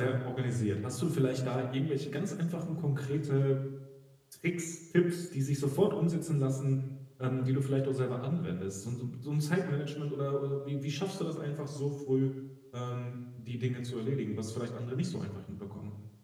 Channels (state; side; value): identical; both; correlation 1.00